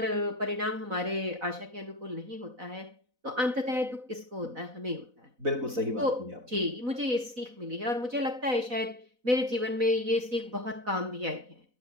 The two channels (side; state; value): left; late; 4.0 ms